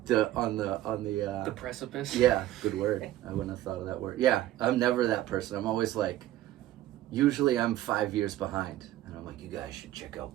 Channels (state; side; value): quieter; left; 14.2 dB